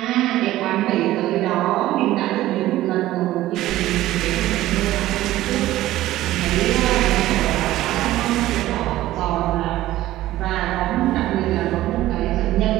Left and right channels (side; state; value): left; quieter; 15.3 dB